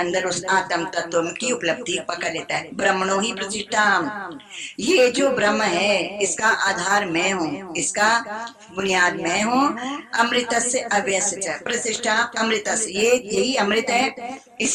उस आत्म तत्व की उपलब्धि पकड़ लेता है। ब्रह्मणो ही प्रतिष्ठा, ये जो ब्रह्म है इसका आधार मैं हूँ, इसका बुनियाद मैं हूँ। अमृत से अव्यय प्रतिष्ठा, अमृत ये यही अमृत है,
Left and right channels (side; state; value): both; identical; correlation 1.00